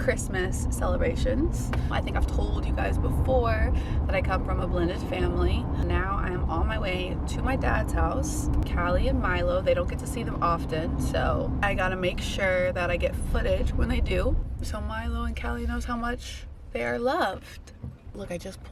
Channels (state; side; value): identical; both; correlation 1.00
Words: celebrations. I think I've told you guys before that I come from a blended family. Now I am on my way to my dad's house. Callie and Milo, they don't get to see them often, so I gotta make sure that I get footage when they do, so Milo and Callie knows how much they are loved. Look, I just